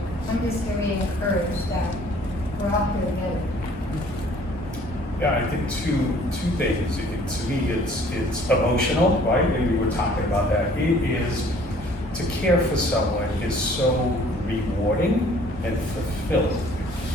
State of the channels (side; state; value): both; normal; correlation 0.55